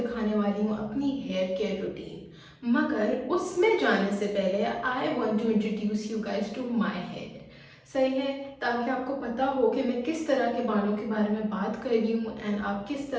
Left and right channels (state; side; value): identical; both; correlation 1.00